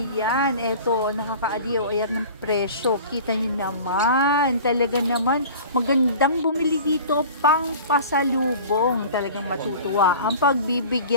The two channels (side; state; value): both; inverted; correlation -0.41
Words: eto, nakakaaliw. Ayan ng presyo. Kita nyo naman. Talaga naman, magandang bumili dito pang pasalubong. Talagang matutuwa ang